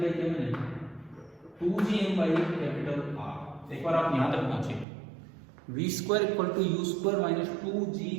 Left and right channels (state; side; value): drops out; left; at 4.9 s